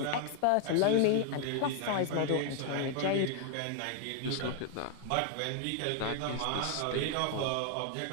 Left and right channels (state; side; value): different; both; correlation 0.00